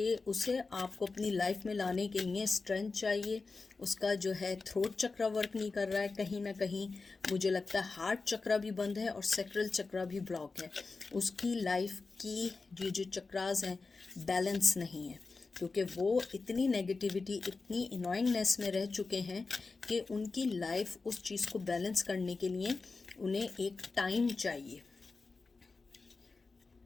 उसे आपको अपनी लाइफ में लाने के लिए स्ट्रेंथ चाहिए। उसका जो है थ्रोट चक्र वर्क नहीं कर रहा है, कहीं ना कहीं मुझे लगता है हार्ट चक्र भी बंद है और सैक्रल चक्र भी ब्लॉक है। उसकी लाइफ की ये जो चक्रास हैं बैलेंस नहीं है, क्योंकि वो इतनी नेगेटिविटी, इतनी इनॉइंगनेस में रह चुके हैं कि उनकी लाइफ उस चीज़ को बैलेंस करने के लिए उन्हें एक टाइम चाहिए।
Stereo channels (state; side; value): quieter; right; 4.1 dB